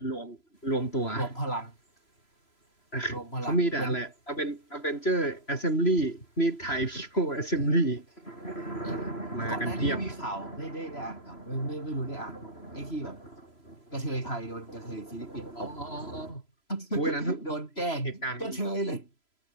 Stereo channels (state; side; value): late; right; 3.0 ms